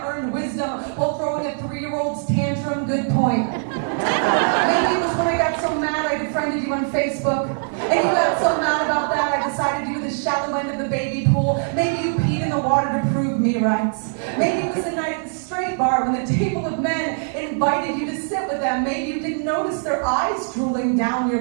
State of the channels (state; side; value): silent; left; digital silence